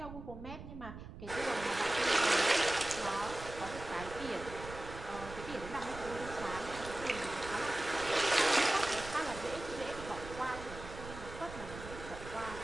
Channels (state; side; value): noise; right; rumble, 12 dB below the sound